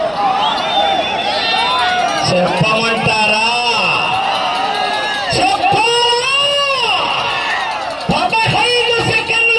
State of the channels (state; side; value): noise; right; hum, 28 dB below the sound